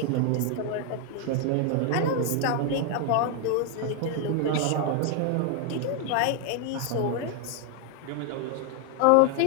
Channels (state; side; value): different; both; correlation 0.01